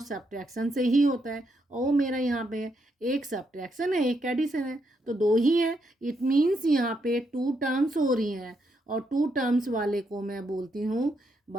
सब्ट्रैक्शन से ही होता है। और मेरा यहाँ पे एक सब्ट्रैक्शन है, एक एडिशन है, तो दो ही है। इट मीन्स यहाँ पे 2 टर्म्स हो रही हैं, और 2 टर्म्स वाले को मैं बोलती हूँ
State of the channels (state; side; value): normal; both; correlation 0.79